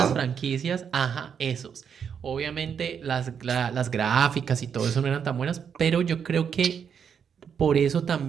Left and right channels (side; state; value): left; quieter; 7.4 dB